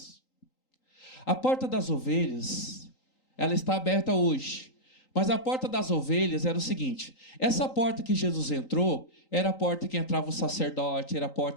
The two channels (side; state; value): right; late; 3.8 ms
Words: A Porta das Ovelhas, ela está aberta hoje. Mas a Porta das Ovelhas era o seguinte: essa porta que Jesus entrou, era a porta que entrava o sacerdote, era a